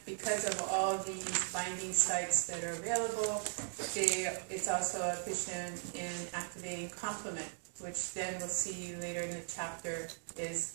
because of all these binding sites that are available. It's also efficient in activating complement, which then we'll see later in the chapter is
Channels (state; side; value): silent; left; digital silence